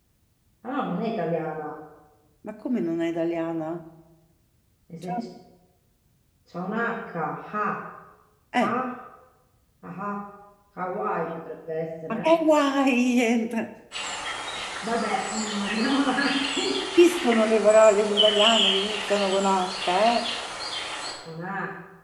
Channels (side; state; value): both; identical; correlation 1.00